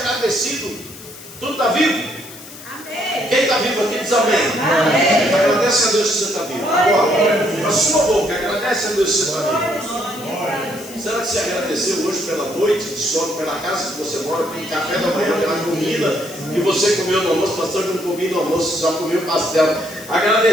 Tu está vivo? Amém. Quem está vivo aqui diz amém. Amém. Agradece a Deus que você está vivo. Agora, a sua boca, agradece a Deus que você está vivo. Será que você agradeceu hoje pela noite de sono, pela casa que você mora, pelo café da manhã, pela comida que você comeu no almoço? Pastor, eu não comi no almoço, só comi o pastel.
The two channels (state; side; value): noise; left; hiss, 16 dB below the sound